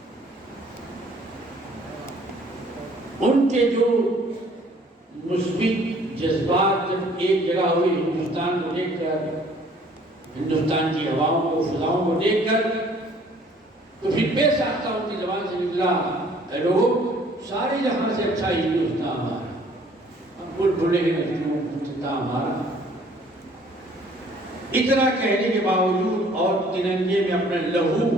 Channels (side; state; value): both; normal; correlation 0.57